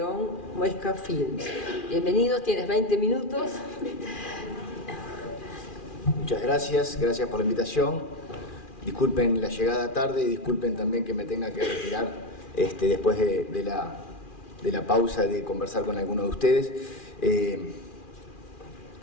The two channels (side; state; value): right; late; 2.4 ms